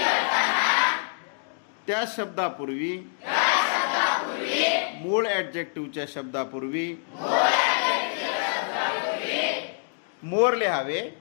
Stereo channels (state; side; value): silent; right; digital silence